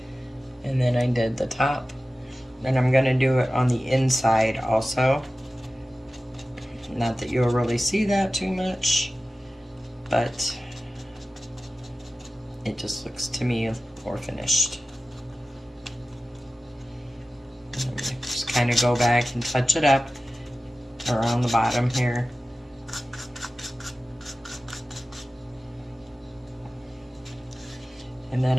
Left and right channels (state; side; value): normal; both; correlation 0.95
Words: and then I did the top. Then I'm going to do it on the inside also. Not that you'll really see that too much, but it just looks to me more finished. Just kind of go back and touch it up around the bottom here. And then